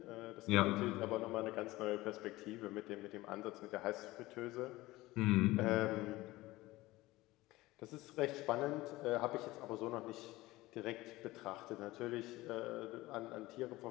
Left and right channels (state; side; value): quieter; right; 18.9 dB